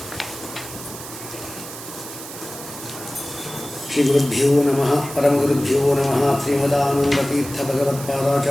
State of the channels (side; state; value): right; noise; hiss, 12 dB below the sound